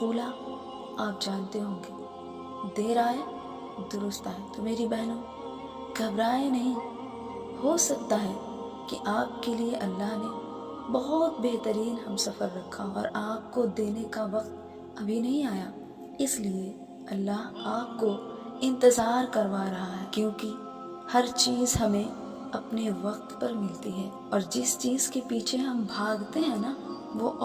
آپ جانتے ہوں گے، دیر آئے درست آئے۔ تو میری بہنوں، گھبرائے نہیں، ہو سکتا ہے کہ آپ کے لیے اللہ نے بہت بہترین ہم سفر رکھا اور آپ کو دینے کا وقت ابھی نہیں آیا، اس لیے اللہ آپ کو انتظار کروا رہا ہے، کیونکہ ہر چیز ہمیں اپنے وقت پر ملتی ہے، اور جس چیز کے پیچھے ہم بھاگتے ہیں نا، وہ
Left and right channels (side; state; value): both; identical; correlation 1.00